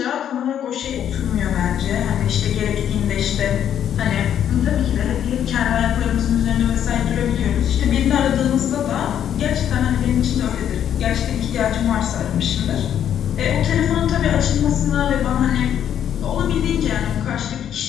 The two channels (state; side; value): quieter; right; 9.8 dB